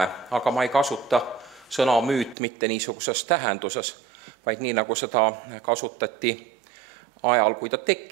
aga ma ei kasuta sõna müüt mitte niisuguses tähenduses, vaid nii, nagu seda kasutati ajal, kui ta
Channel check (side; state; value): left; drops out; at 2.4 s